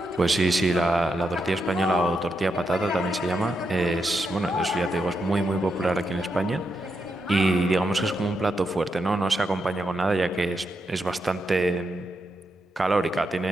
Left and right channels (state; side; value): normal; both; correlation 0.83